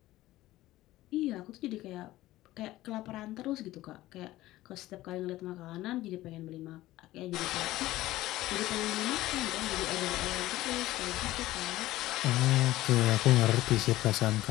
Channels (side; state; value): right; quieter; 16.4 dB